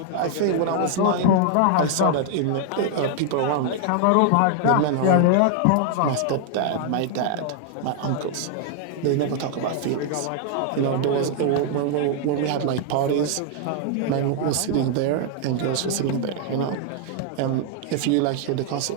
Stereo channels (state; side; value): different; both; correlation 0.00